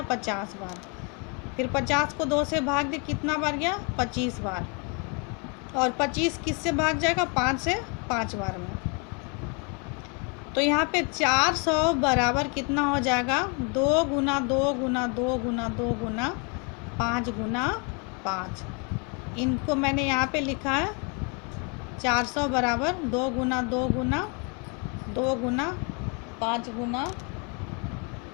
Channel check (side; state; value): right; quieter; 34.6 dB